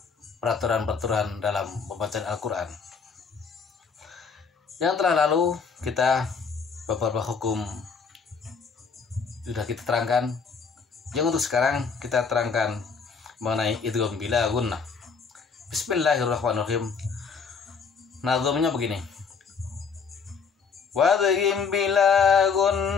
peraturan-peraturan dalam pembacaan Al-Quran. Yang telah lalu kita beberapa hukum sudah kita terangkan. Yang untuk sekarang kita terangkan mengenai idgham bila gunnah. Bismillahirrahmanirrahim. Nazamnya begini. Wadghim bila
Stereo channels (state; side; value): quieter; right; 5.6 dB